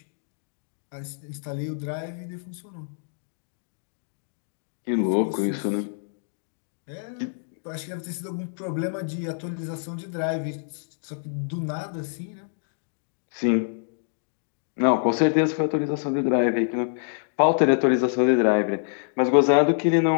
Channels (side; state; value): right; silent; digital silence